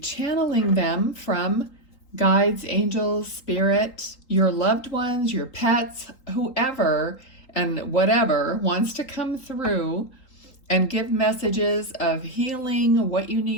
them from guides, angels, spirit, your loved ones, your pets, whoever and whatever wants to come through and give messages of healing, what you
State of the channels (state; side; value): late; right; 3.8 ms